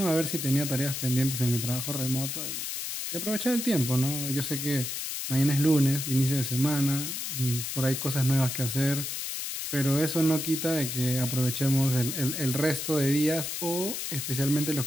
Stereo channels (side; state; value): left; noise; hiss, 4 dB below the sound